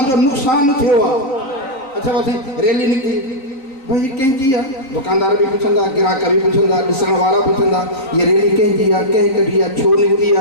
नुक़सानु थियो आहे। अच्छा बस रैली निकिती, भाई कंहिंजी आहे? दुकानदार भी पुछंदा, ग्राहक भी पुछंदा, ॾिसण वारा पुछंदा, ये रैली कंहिंजी आहे, कंहिं कढी आहे, छो निकिती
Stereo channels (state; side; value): late; right; 3.9 ms